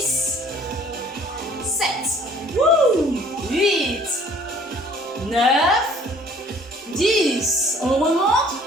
7, 8, 9, 10. On remonte,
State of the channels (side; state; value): both; normal; correlation 0.55